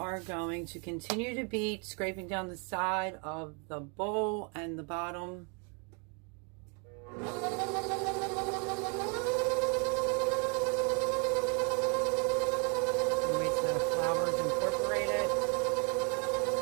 going to continue to beat, scraping down the side of the bowl and the bottom. Wait till the flour is incorporated.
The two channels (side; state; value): left; quieter; 35.4 dB